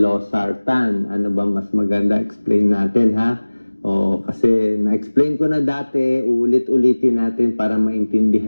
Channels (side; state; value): both; inverted; correlation -1.00